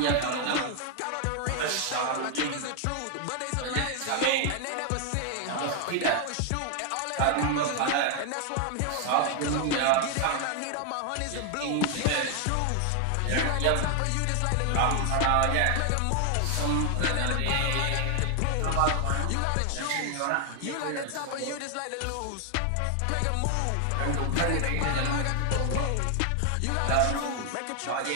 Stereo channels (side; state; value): both; different; correlation 0.00